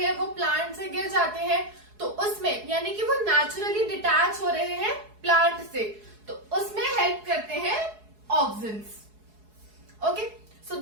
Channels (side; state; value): left; late; 4.7 ms